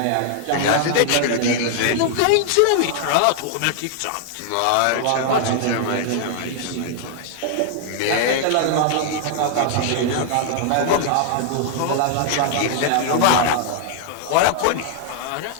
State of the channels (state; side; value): different; both; correlation 0.00